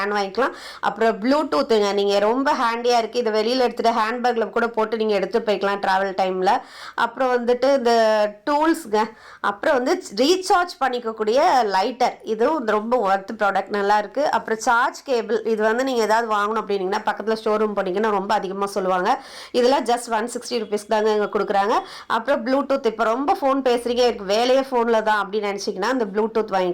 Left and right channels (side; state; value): both; identical; correlation 1.00